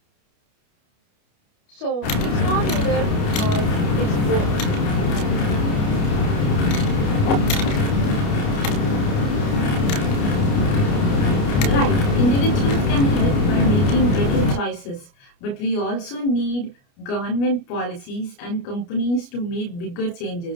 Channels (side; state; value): right; late; 29 ms